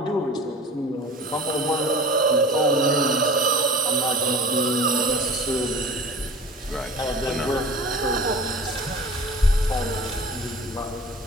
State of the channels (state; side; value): normal; both; correlation 0.40